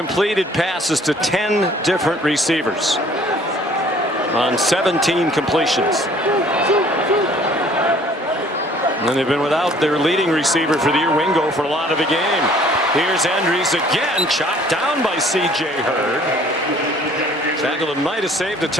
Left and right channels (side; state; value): both; normal; correlation 0.55